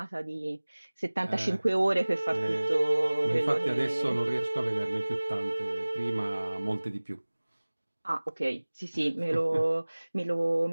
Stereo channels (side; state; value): both; inverted; correlation -1.00